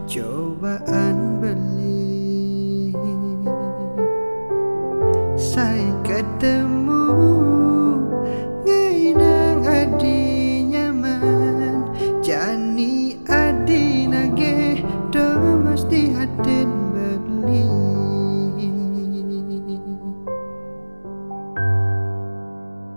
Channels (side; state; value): both; inverted; correlation -1.00